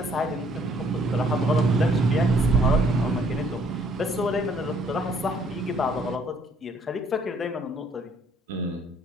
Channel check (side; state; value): both; normal; correlation 0.63